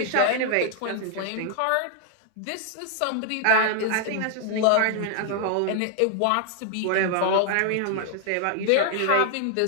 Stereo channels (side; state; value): both; different; correlation 0.00